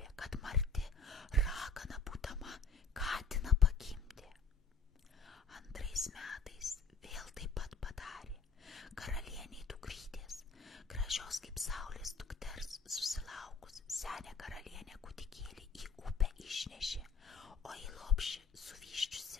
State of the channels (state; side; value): quieter; right; 4.3 dB